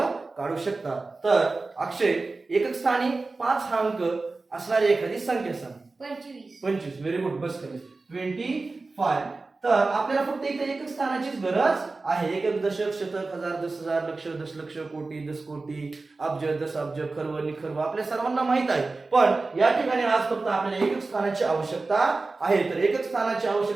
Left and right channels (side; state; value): left; quieter; 3.6 dB